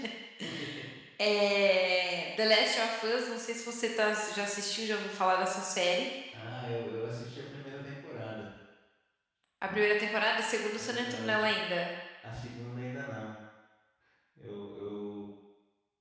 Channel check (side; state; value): both; identical; correlation 1.00